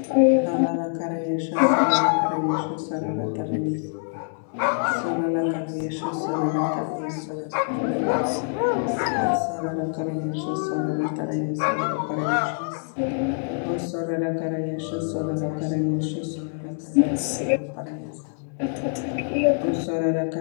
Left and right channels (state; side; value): silent; right; digital silence